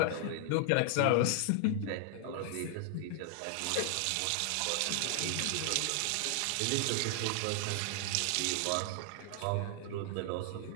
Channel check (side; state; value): both; different; correlation 0.00